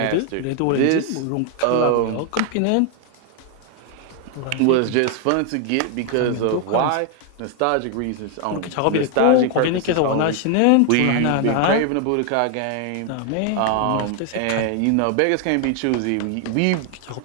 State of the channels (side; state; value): both; different; correlation 0.00